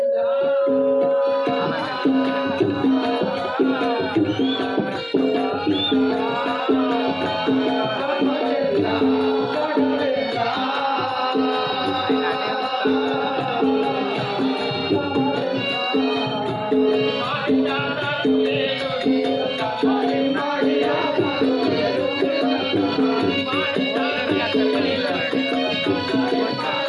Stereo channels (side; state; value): both; identical; correlation 1.00